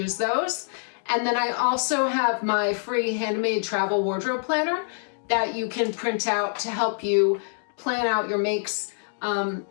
those. And then I also have my free handmade travel wardrobe planner that you can print out to help you plan out your makes.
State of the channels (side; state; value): right; silent; digital silence